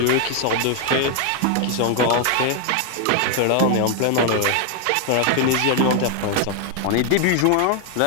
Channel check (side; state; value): both; different; correlation 0.00